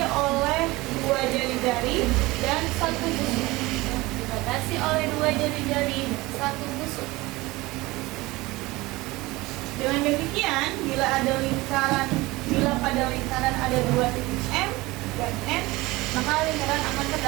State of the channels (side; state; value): left; quieter; 20.9 dB